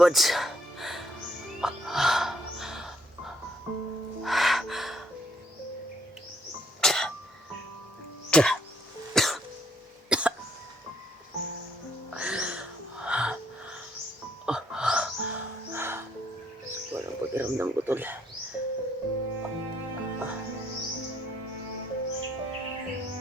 Walang pakiramdam ko tol.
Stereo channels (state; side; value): normal; both; correlation 0.67